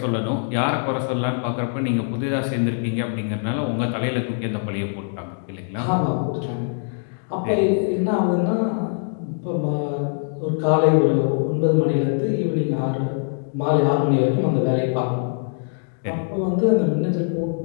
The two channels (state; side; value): silent; right; 62 dB below the other